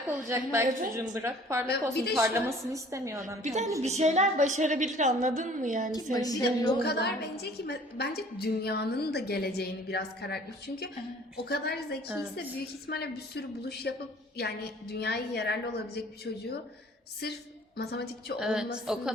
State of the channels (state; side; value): normal; both; correlation 0.52